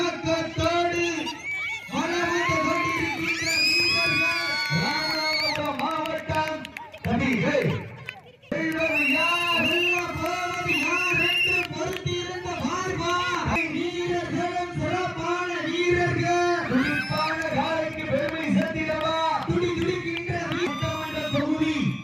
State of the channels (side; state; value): both; identical; correlation 1.00